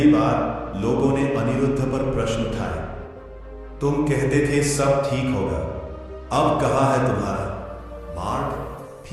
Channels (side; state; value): both; identical; correlation 1.00